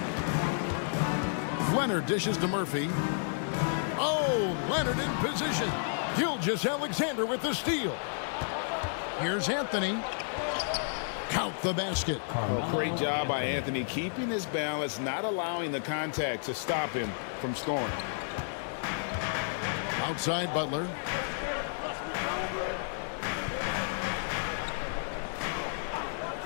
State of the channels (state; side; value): silent; right; 57 dB below the other